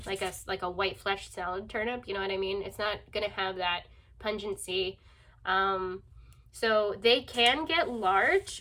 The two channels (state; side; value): identical; both; correlation 1.00